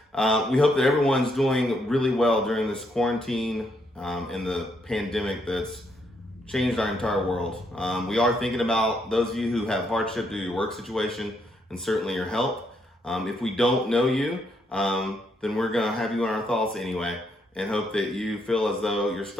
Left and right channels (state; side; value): normal; both; correlation 0.75